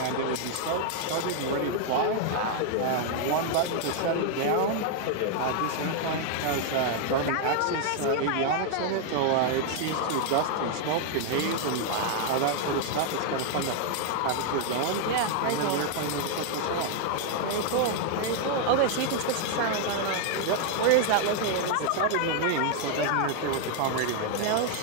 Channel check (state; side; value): different; both; correlation 0.00